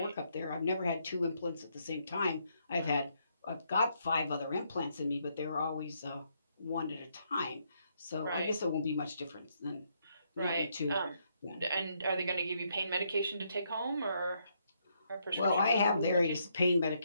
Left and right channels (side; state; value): both; inverted; correlation -0.75